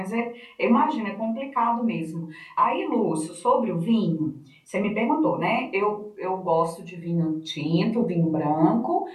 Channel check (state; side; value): identical; both; correlation 1.00